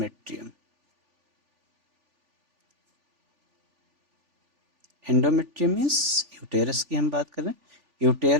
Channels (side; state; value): left; late; 3.4 ms